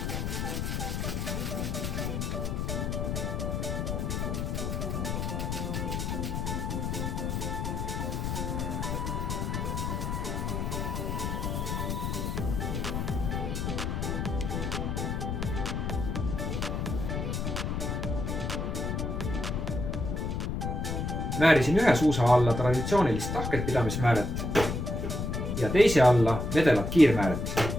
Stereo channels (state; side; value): noise; left; rumble, 2 dB below the sound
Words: Määrisin ühe suusa alla traditsioonilist tahket pidamismääret ja teise alla vedelat kiirmääret.